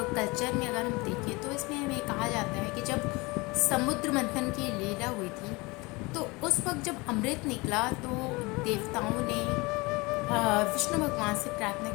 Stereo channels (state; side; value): quieter; right; 24.8 dB